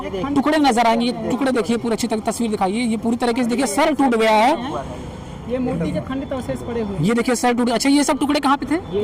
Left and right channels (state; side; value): identical; both; correlation 1.00